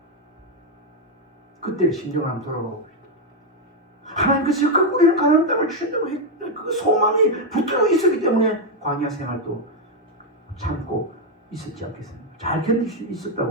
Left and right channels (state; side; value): normal; both; correlation 0.02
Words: 그때 심정을 한번 돌아가 봅시다. 하나님께서 우리는 가나안 땅을 주신다고 했던 그 소망이 붙들어 있었기 때문에 광야 생활도 참고 있었지 않겠습니까? 잘 견딜 수